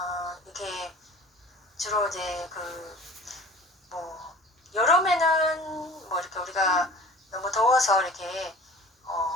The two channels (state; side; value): normal; both; correlation 0.43